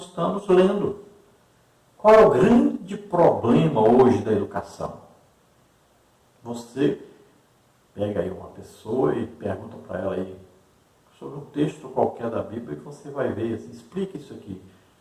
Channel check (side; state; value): both; identical; correlation 1.00